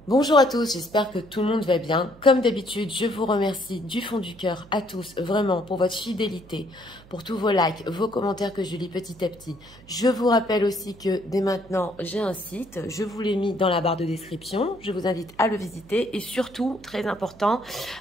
Bonjour à tous, j'espère que tout le monde va bien. Comme d'habitude, je vous remercie du fond du cœur à tous, vraiment, pour votre fidélité, pour tous vos likes, vos commentaires que je lis petit à petit. Je vous rappelle aussi que dès maintenant, j'ai un site, je vous l'ai mis dans la barre de description. Je vous invite à le visiter et surtout, très important,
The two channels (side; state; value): right; noise; hum, 23 dB below the sound